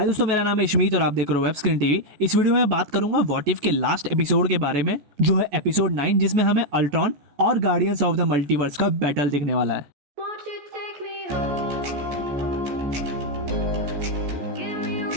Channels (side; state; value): left; late; 14 ms